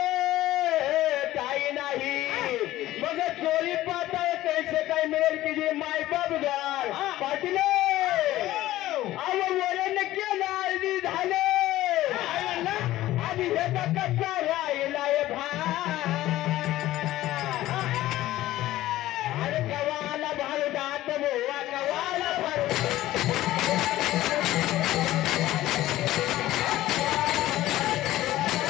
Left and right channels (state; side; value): quieter; right; 15.4 dB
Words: काही नाही मग चोरी पाहता कैसे काय मिळेल की जे मायबाप गार पाटील वरण केलं अर्धी झाले आधी ह्याचा कच्चा राहिलाय अरे कवाला भारुडात बोवा कवाला